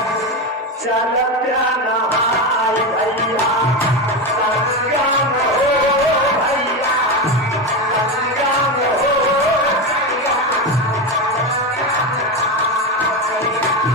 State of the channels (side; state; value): both; normal; correlation 0.16